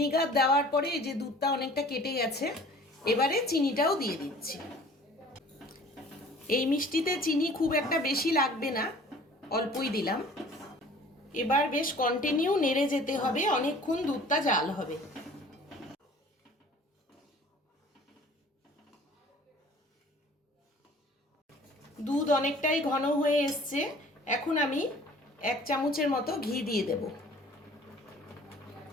দেওয়ার পরে এই যে দুধটা অনেকটা কেটে গেছে, এবারে চিনিটাও দিয়ে দিচ্ছি। এই মিষ্টিতে চিনি খুব একটা বেশি লাগবে না, অল্পই দিলাম। এবার বেশ কন্টিনিউ নেড়ে যেতে হবে, অনেকক্ষণ দুধটা জাল হবে। দুধ অনেকটাই ঘন হয়ে এসছে। এখন আমি 1 চামচের মতো ঘি দিয়ে দেব।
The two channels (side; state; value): both; normal; correlation 0.49